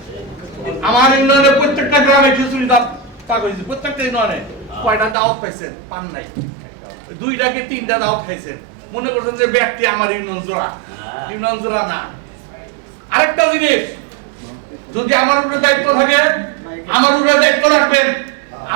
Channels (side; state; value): left; drops out; at 5.2 s